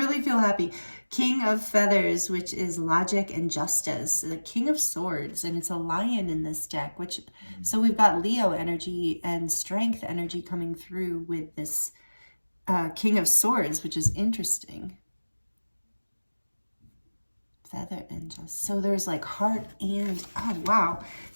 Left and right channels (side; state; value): both; inverted; correlation -1.00